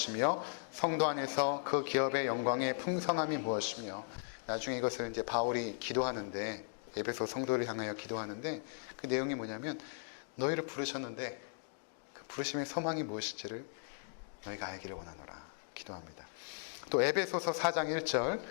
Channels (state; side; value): silent; right; digital silence